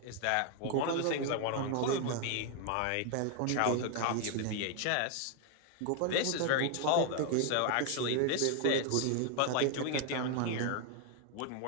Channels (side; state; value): both; different; correlation 0.00